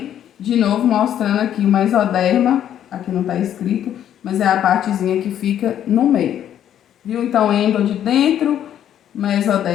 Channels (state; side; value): quieter; right; 10.4 dB